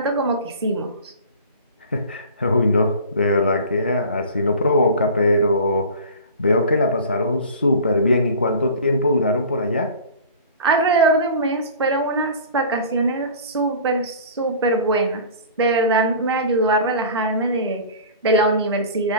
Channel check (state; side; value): inverted; both; correlation -0.39